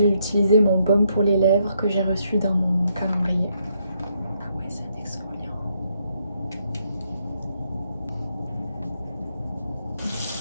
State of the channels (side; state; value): both; inverted; correlation -0.75